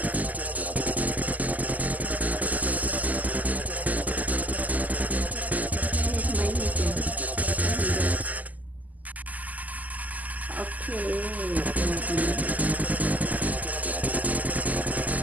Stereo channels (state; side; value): late; left; 0.079 ms